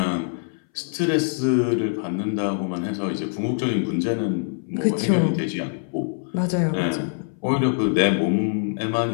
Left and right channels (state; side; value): silent; right; 62 dB below the other